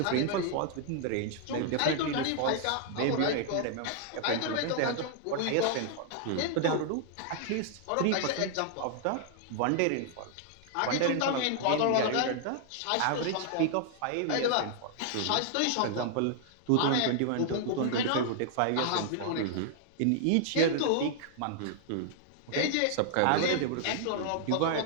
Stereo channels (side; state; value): both; different; correlation -0.01